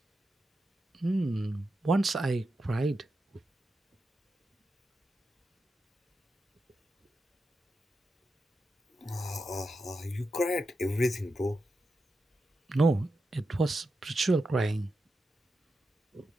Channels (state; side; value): normal; both; correlation 0.88